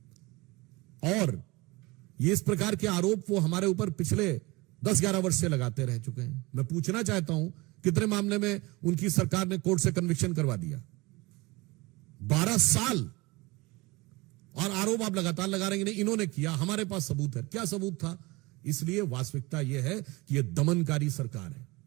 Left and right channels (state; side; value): quieter; left; 23.3 dB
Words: और ये इस प्रकार के आरोप वो हमारे ऊपर पिछले 10-11 वर्ष से लगाते रह चुके हैं। मैं पूछना चाहता हूं, कितने मामले में उनकी सरकार ने कोर्ट से कन्विक्शन करवा दिया? 12 साल। और आरोप आप लगातार लगा रहे हैं, इन्होंने किया, हमारे पास सबूत है। क्या सबूत था? इसलिए वास्तविकता यह है कि यह दमनकारी सरकार है।